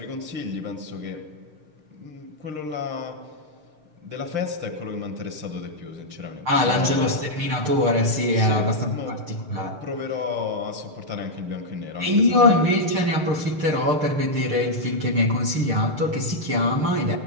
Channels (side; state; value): left; late; 6.6 ms